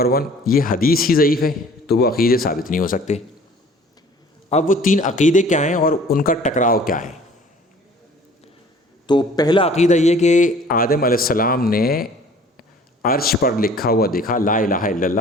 1، یہ حدیث ہی ضعیف ہے تو وہ عقیدے ثابت نہیں ہو سکتے۔ اب وہ 3 عقیدے کیا ہیں اور ان کا ٹکراؤ کیا ہے؟ تو پہلا عقیدہ یہ کہ آدم علیہ السلام نے عرش پر لکھا ہوا دیکھا لا الہ الا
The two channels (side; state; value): both; normal; correlation 0.51